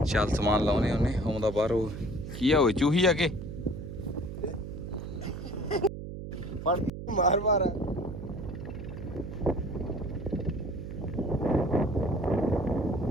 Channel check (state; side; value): noise; right; hum, 8 dB below the sound